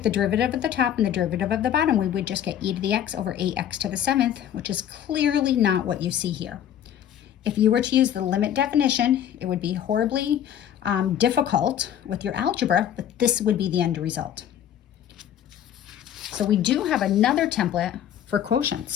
the derivative of the top and the derivative of the bottom, we would just get e to the x over 8x to the 7th, which is clearly not what you see here. If you were to use the limit definition, it would be horribly difficult with your algebra, but this would be the end result. So we do have another template for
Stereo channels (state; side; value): quieter; right; 10.2 dB